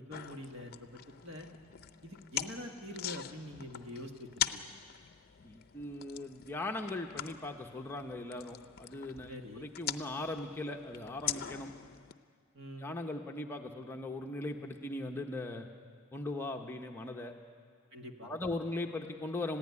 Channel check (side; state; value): right; quieter; 3.6 dB